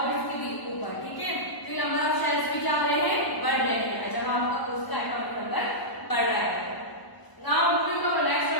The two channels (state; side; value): late; right; 1.0 ms